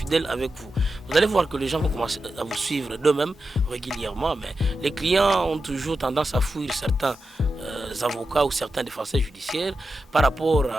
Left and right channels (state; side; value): normal; both; correlation 0.90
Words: avec vous. Vous allez voir que les gens vont commencer à vous suivre d'eux-mêmes régulièrement. Mais les clients ont toujours tendance à fuir certains avocats ou certains défenseurs judiciaires par rapport